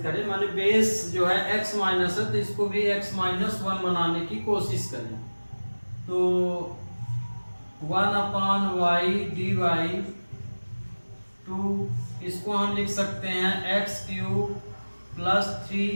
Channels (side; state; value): both; inverted; correlation -1.00